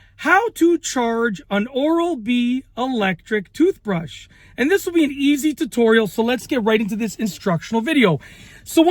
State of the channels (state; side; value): identical; both; correlation 1.00